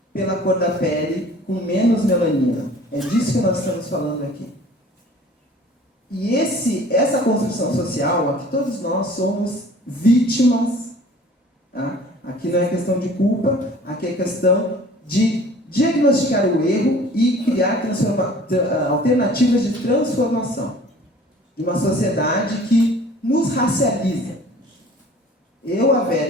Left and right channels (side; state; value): both; normal; correlation 0.48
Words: pela cor da pele com menos melanina. É disso que nós estamos falando aqui. E essa construção social, aqui todos nós somos vítimas, tá? Aqui não é questão de culpa, aqui é questão de diagnosticar o erro e criar alternativas de transformação de uma sociedade que nos racializa. Eu, a